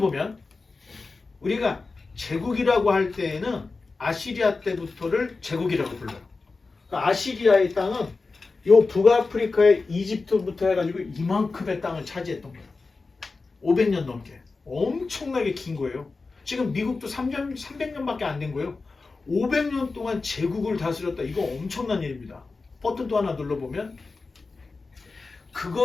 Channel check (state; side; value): quieter; right; 4.0 dB